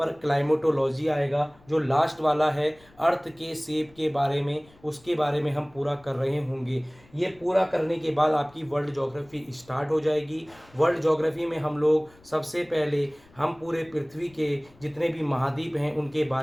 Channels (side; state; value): left; noise; rumble, 28 dB below the sound